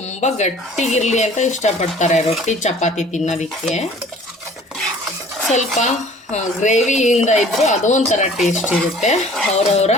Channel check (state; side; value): normal; both; correlation 0.51